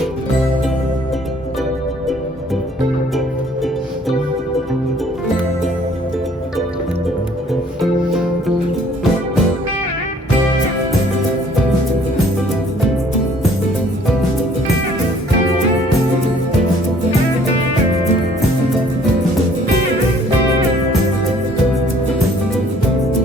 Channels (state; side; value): normal; both; correlation 0.58